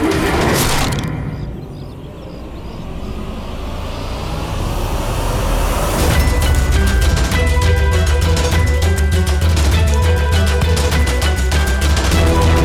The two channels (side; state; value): both; identical; correlation 1.00